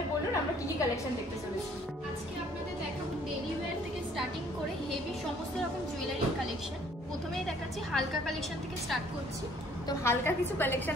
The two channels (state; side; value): normal; both; correlation 0.59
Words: বলুন আমরা কি কি কালেকশন দেখতে চলেছি। আজকে আপনাদের দেখাবো ডেইলি ওয়্যার থেকে স্টার্টিং করে হেভি সমস্ত রকম জুয়েলারির কালেকশন। প্রথমেই দেখাচ্ছি হালকা কালেকশন থেকে স্টার্ট করছি। তো হালকা কিছু